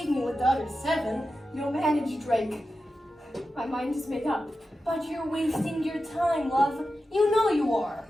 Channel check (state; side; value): normal; both; correlation 0.92